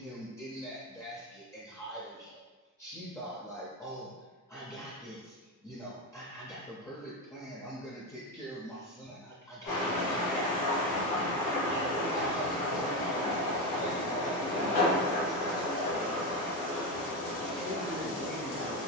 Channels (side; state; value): both; normal; correlation 0.14